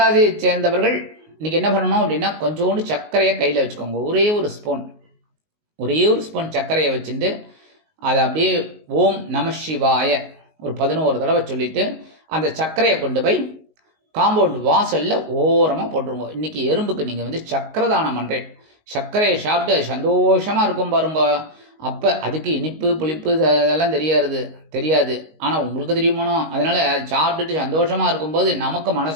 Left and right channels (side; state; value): left; late; 19 ms